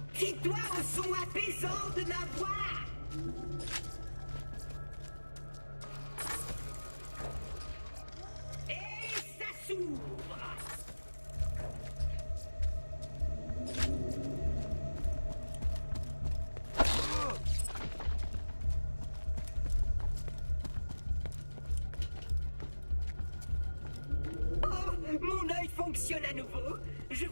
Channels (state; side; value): inverted; both; correlation -1.00